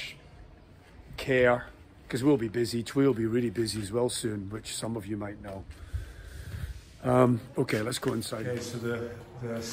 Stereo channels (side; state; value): both; identical; correlation 1.00